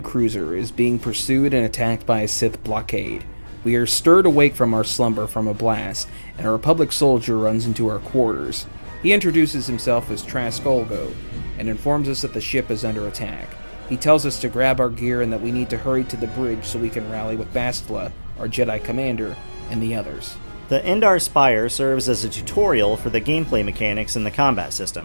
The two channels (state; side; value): inverted; both; correlation -1.00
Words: cruiser is being pursued and attacked by a Sith blockade. We are stirred awake from our slumber from a blast, and a Republic soldier runs into our quarters. He introduces himself as Trask Olgo, and informs us that the ship is under attack. He tells us to grab our gear and that we need to hurry to the bridge so we can rally with Bastila, our Jedi commander, and the others. The Endar Spire serves as a tutorial for the gameplay mechanics in the combat